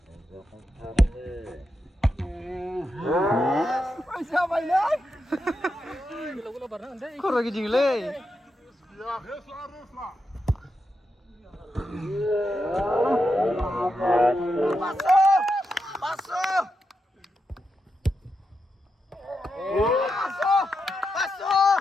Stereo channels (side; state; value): both; normal; correlation 0.86